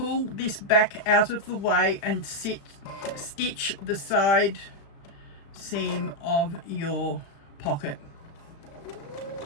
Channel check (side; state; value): right; late; 35 ms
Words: this back out of the way and stitch the side seam of your pocket.